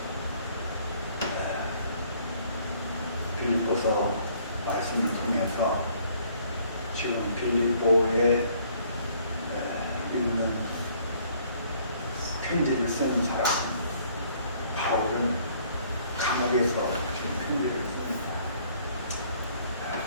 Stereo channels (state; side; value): inverted; both; correlation -0.61